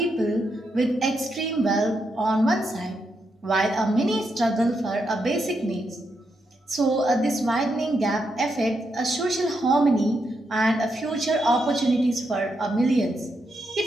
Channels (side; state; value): both; normal; correlation 0.82